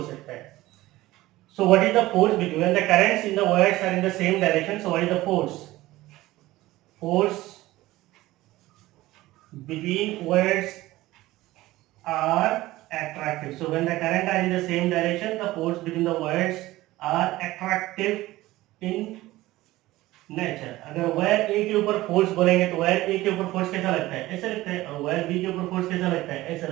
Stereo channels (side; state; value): left; quieter; 17.6 dB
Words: सकता है. So what is the force between when the currents in the wires are in the same direction? So what is the force? Force between wires are attractive. So when the current are in the same direction, the force between the wires are attractive in nature. अगर wire ए के ऊपर force बोलेंगे तो wire ए के ऊपर force कैसा लगता है? ऐसा लगता है. और वायर बी के ऊपर फोर्स कैसा लगता है? ऐसा